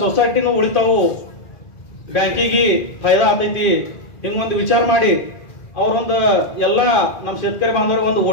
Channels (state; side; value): late; right; 2.5 ms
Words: ಸೊಸೈಟಿನೂ ಉಳಿತಾವು, ಬ್ಯಾಂಕಿಗೆ ಫಾಯ್ದಾ ಆಗ್ತೈತಿ, ಹಿಂಗೊಂದು ವಿಚಾರ ಮಾಡಿ ಅವ್ರೊಂದು ಎಲ್ಲ ನಮ್ಮ ಶೇತಕರಿ ಬಾಂಧವರು ಒಂದು